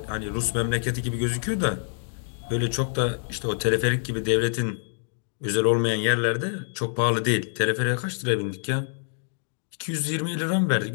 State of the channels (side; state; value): right; silent; digital silence